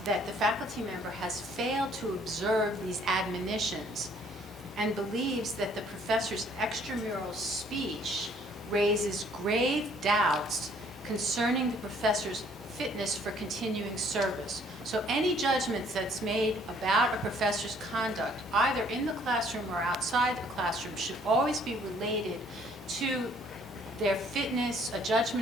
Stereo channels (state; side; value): normal; both; correlation 0.61